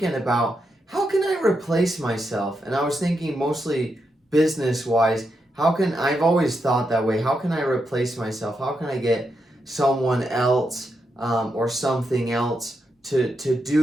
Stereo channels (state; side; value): normal; both; correlation 0.84